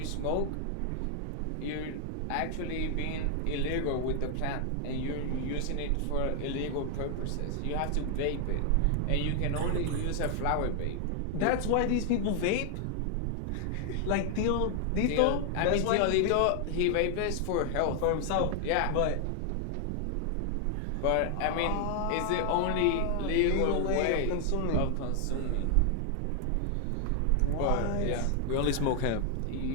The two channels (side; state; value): both; different; correlation 0.00